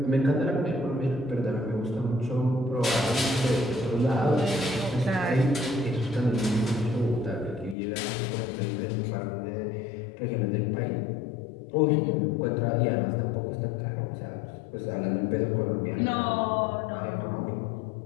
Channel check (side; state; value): right; drops out; at 7.8 s